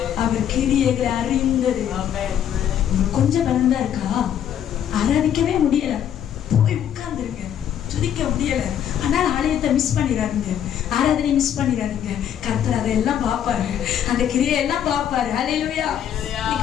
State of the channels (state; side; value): quieter; right; 9.7 dB